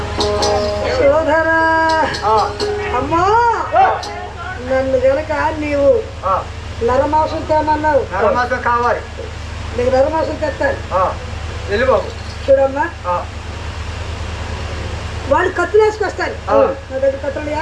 అమ్మా నన్ను గనక నీవు నరమాంసం తేమన్నావు. నరమాంసం కావాలి నీకు నరమాంసం తెస్తాను వెళ్ళి బాబు. చూడమ్మా వాళ్ళు కత్తులు వేసుకొస్తాను. నా దగ్గర కత్తులుయా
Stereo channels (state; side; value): identical; both; correlation 1.00